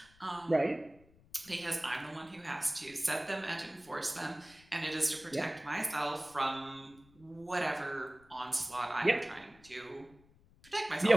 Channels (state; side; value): noise; left; rumble, 27 dB below the sound